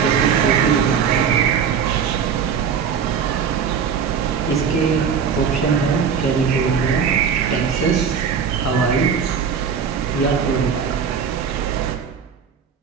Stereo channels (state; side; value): quieter; left; 6.8 dB